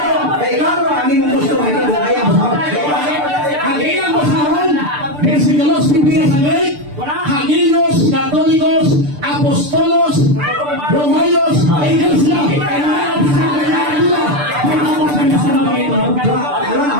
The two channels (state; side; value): late; left; 6.8 ms